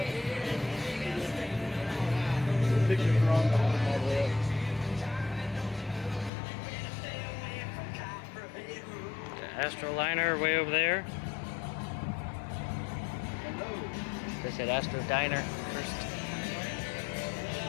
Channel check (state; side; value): drops out; right; at 6.3 s